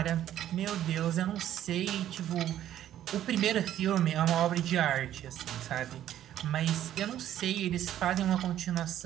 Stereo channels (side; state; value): left; quieter; 11.7 dB